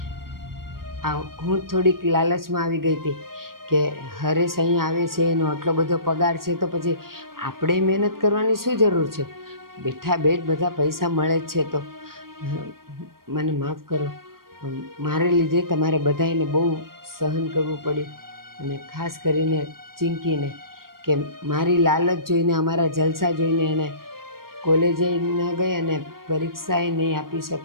હું થોડીક લાલચમાં આવી ગઈ હતી કે હરેશ અહીંયા આવે છે, એનો આટલો બધો પગાર છે તો પછી આપણે મહેનત કરવાની શું જરૂર છે? બેઠા બેઠ બધા પૈસા મળે જ છે. તો મને માફ કરો, મારે લીધે તમારે બધાને બહુ સહન કરવું પડ્યું, અને ખાસ કરીને ચિંકીને કે મારી લાલચ જોઈને, અમારા જલસા જોઈને એને કોલેજે ન ગઈ અને પરીક્ષાએ નહીં આપી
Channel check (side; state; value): left; late; 0.92 ms